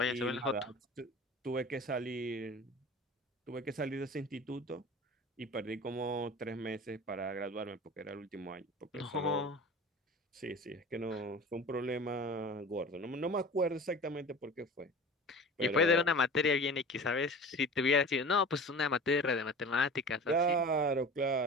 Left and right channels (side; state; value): both; normal; correlation 0.38